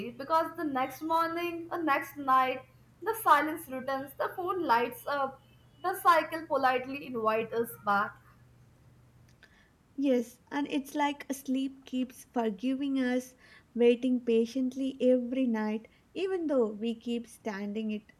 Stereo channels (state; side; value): identical; both; correlation 1.00